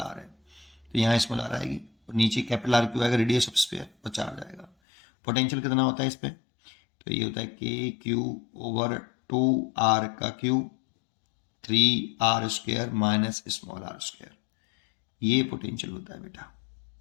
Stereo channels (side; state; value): right; drops out; at 4.7 s